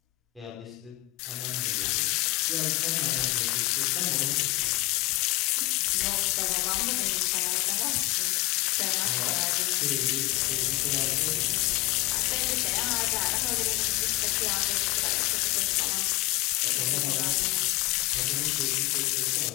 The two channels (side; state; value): right; quieter; 19.4 dB